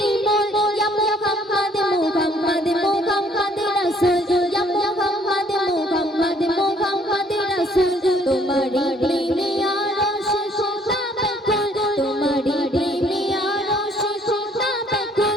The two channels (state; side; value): normal; both; correlation 0.62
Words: ইয়া মুহাম্মদ মুহাম্মদ মুহাম্মদ রাসূল ইয়া মুহাম্মদ মুহাম্মদ মুহাম্মদ রাসূল তোমারি প্রেমে আরশ খোদা বেকুল তোমারি প্রেমে আরশ খোদা